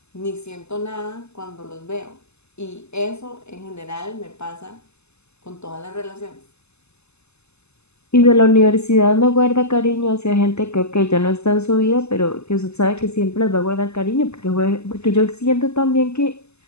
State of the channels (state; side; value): late; right; 0.80 ms